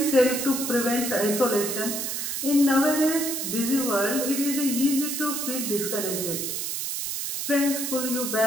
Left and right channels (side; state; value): right; noise; hiss, 3 dB below the sound